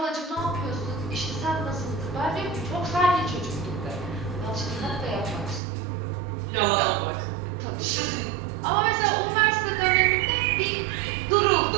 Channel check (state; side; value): drops out; left; at 5.6 s